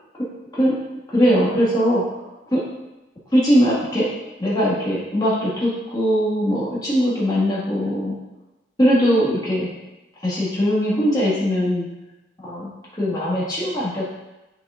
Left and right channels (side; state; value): both; normal; correlation 0.76